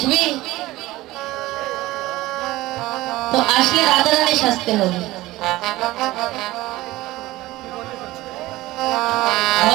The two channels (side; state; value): left; quieter; 18.0 dB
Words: তো আসলে রাধারানী সাজতে হবে,